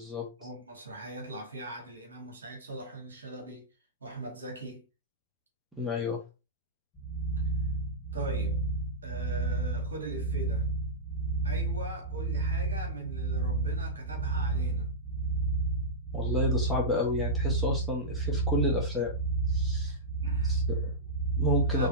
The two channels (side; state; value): both; normal; correlation -0.13